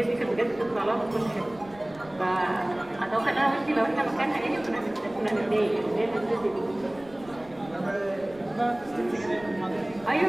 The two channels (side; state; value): right; noise; rumble, 22 dB below the sound